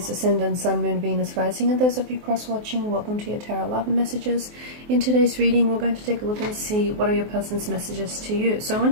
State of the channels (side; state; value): left; late; 24 ms